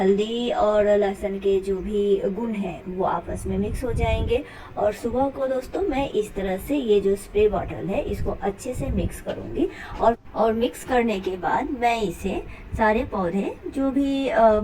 और लहसुन के जो भी गुण हैं वो आपस में मिक्स हो जाएंगे। और सुबह को दोस्तों मैं इस तरह से ये जो स्प्रे बॉटल है इसको अच्छे से मिक्स करूँगी, और मिक्स करने के बाद मैं इसे सारे पौधे जो भी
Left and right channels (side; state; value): both; identical; correlation 1.00